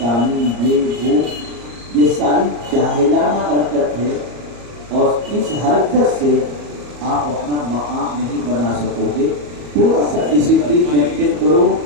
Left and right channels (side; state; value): left; late; 34 ms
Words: یہ وہ، یہ ساری جاہلانہ حرکت ہے، اور اس حرکت سے آپ اپنا مقام نہیں بنا سکو گے۔ تھوڑا سا ڈسپلین مینٹین کرو،